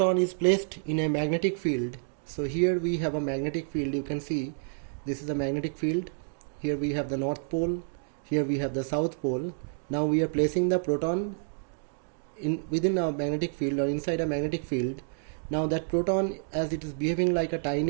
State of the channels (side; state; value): left; silent; digital silence